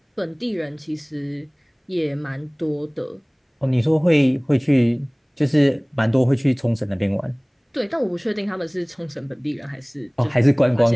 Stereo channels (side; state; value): both; identical; correlation 1.00